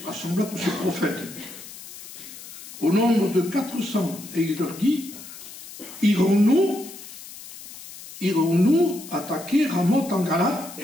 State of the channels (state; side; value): noise; left; hiss, 15 dB below the sound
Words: tous ses prophètes, au nombre de 400, et il leur dit, irons-nous attaquer Ramoth en Galate,